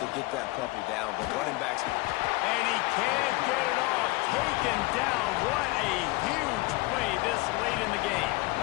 get that puppy down. But running backs... And he can't get it off. Taken down. What a huge play this late in the game.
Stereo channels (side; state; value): right; quieter; 22.5 dB